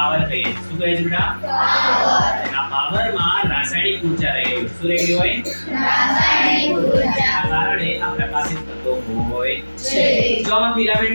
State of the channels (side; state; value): both; inverted; correlation -1.00